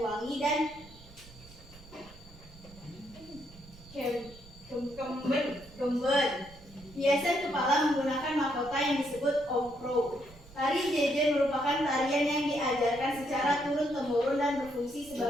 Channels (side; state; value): right; noise; rumble, 21 dB below the sound